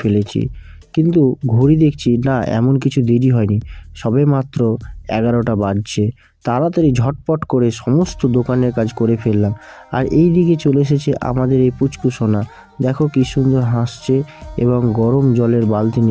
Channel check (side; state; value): both; identical; correlation 1.00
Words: ফেলেছি। কিন্তু ঘড়ি দেখছি না, এমন কিছু দেরি হয়নি, সবে মাত্র 11টা বাজছে। তাড়াতাড়ি ঝটপট করে সমস্ত দোকানের কাজ করে ফেললাম। আর এই দিকে চলে এসেছে আমাদের এই পুচকু সোনা। দেখো কি সুন্দর হাসছে এবং গরম জলের বালতি